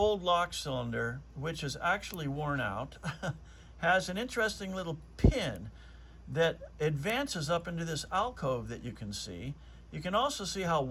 lock cylinder, which is actually worn out, has an interesting little pin that advances up into this alcove that you can see. You can also see how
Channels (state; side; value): identical; both; correlation 1.00